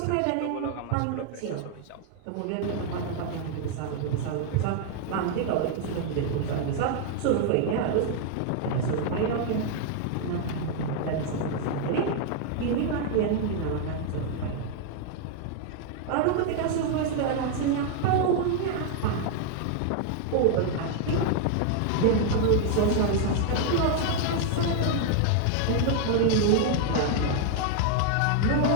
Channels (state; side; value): different; both; correlation 0.00